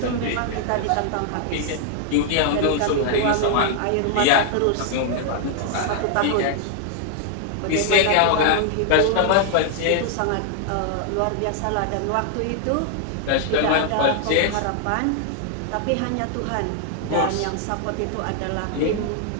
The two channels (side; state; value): both; different; correlation 0.00